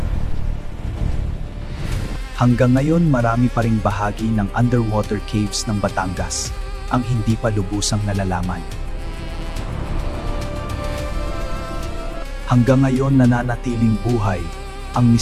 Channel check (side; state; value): both; identical; correlation 1.00